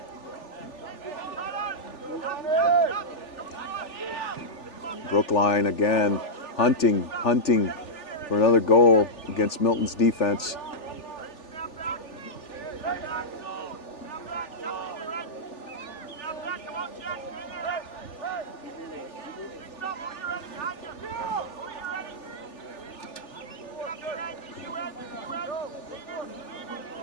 Brookline again, hunting for another goal against Milton's defense.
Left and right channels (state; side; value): late; right; 3.4 ms